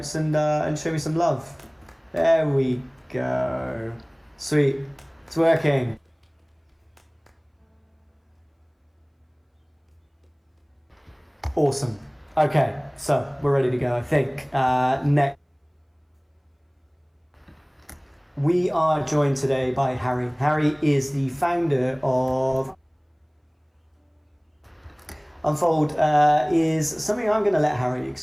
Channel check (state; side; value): identical; both; correlation 1.00